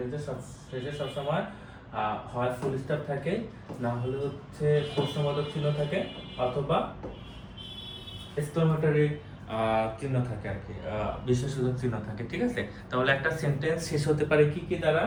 শেষে সবসময় হয় ফুল স্টপ থাকে, না হলে হচ্ছে প্রশ্নবোধক চিহ্ন থাকে, অথবা এক্সক্লামেটরি চিহ্ন থাকে আর কি, বিশেষসূচক চিহ্ন থাকে, ঠিক আছে? তাহলে একটা সেন্টেন্স শেষ হতে পারে কি কি দ্বারা?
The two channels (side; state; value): both; identical; correlation 1.00